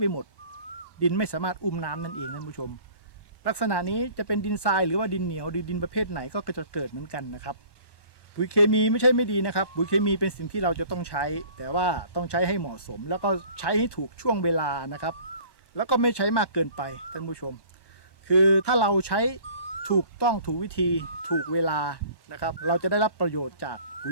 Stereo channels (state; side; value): late; right; 1.1 ms